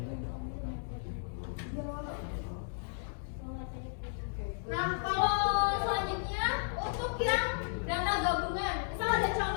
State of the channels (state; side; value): silent; right; digital silence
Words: Nah, kalau selanjutnya untuk yang dana gabungan, misal ada